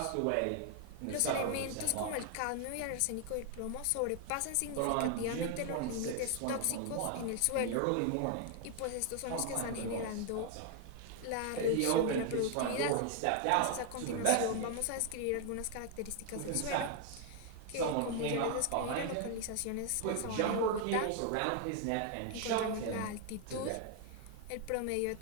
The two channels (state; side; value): different; both; correlation 0.00